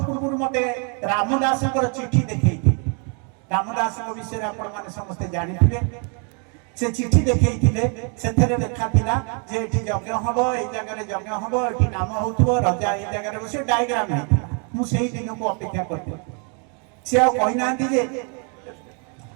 ପୂର୍ବରୁ ମତେ ରାମଦାସଙ୍କର ଚିଠି ଦେଖେଇଥିଲେ। ରାମଦାସଙ୍କ ବିଷୟରେ ଆପଣ ମାନେ ସମସ୍ତେ ଜାଣିଥିବେ। ସେ ଚିଠି ଦେଖେଇଥିଲେ, ସେଥିରେ ଲେଖା ଥିଲା ଯେ ଏଠି ଯଜ୍ଞ ହବ, ଏଇ ଜାଗାରେ ଯଜ୍ଞ ହବ, ଏଠି ନାମ ହଉଥିବ, ରଜା ଏଇ ଜାଗାରେ ବସିବ, ଡାଇଗ୍ରାମ ହେଇଥିଲା। ମୁଁ ସେଇ ଦିନକୁ ଅପେକ୍ଷା କରିଥିଲି। ସେ ଆଉ କହିନାହାନ୍ତି ଯେ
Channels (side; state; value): left; quieter; 38.5 dB